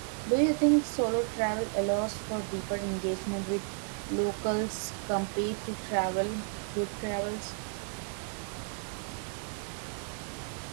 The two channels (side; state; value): left; silent; 56 dB below the other